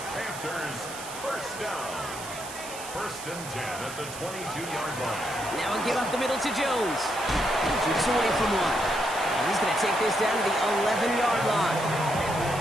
Panthers first down. 1st and 10 at the 22-yard line. Now a give up the middle to Jones. He drifts away from one. And he's going to take this down to the 11-yard line.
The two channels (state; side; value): noise; right; hiss, 12 dB below the sound